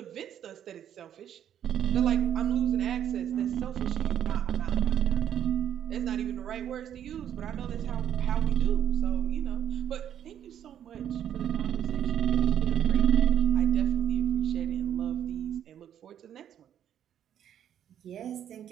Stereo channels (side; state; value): left; quieter; 10.0 dB